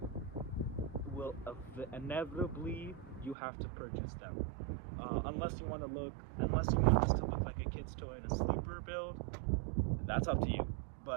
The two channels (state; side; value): drops out; left; at 3.4 s